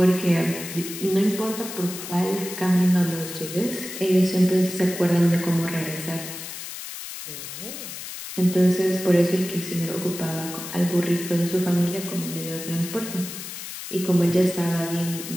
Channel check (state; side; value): noise; left; hiss, 9 dB below the sound